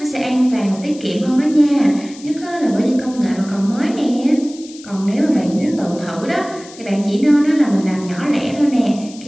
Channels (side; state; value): left; noise; hiss, 19 dB below the sound